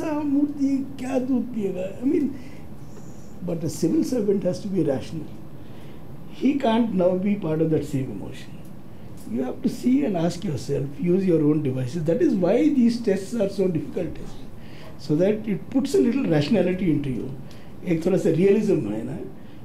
मूर्ति क्या दूध पिएगा? I mean, but a civil servant has to be rational. He can't now be part of that same emotion. You have to see and ask yourself, use your own devices. That is why these tests are so difficult tests. So that it puts a little rationality into you. एक थोड़ा सा realism है ना.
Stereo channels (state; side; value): identical; both; correlation 1.00